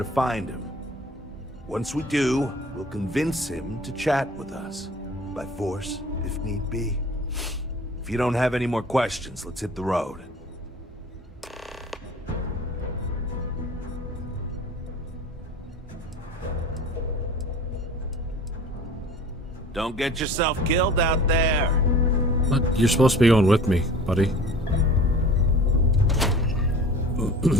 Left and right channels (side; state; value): both; normal; correlation 0.43